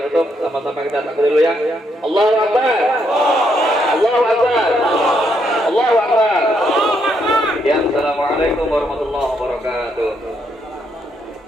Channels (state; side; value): normal; both; correlation 0.75